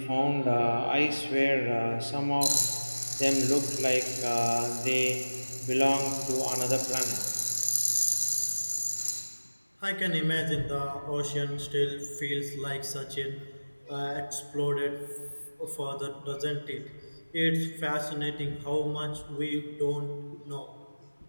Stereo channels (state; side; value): inverted; both; correlation -1.00